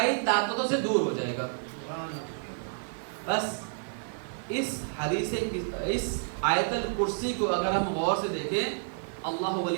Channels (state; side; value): silent; left; 57 dB below the other